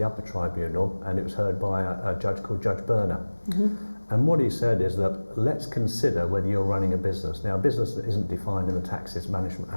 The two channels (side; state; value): both; inverted; correlation -1.00